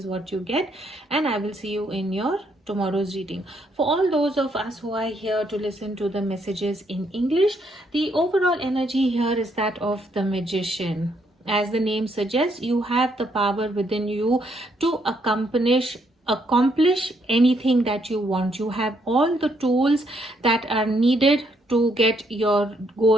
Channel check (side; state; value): both; normal; correlation 0.73